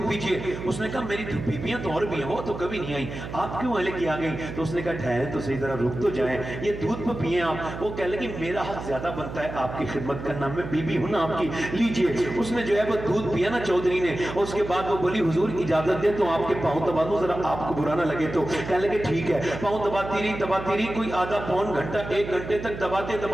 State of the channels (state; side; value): noise; right; hum, 9 dB below the sound